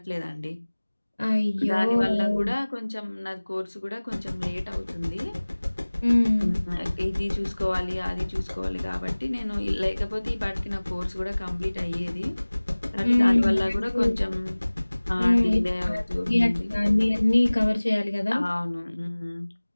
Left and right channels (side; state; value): both; inverted; correlation -1.00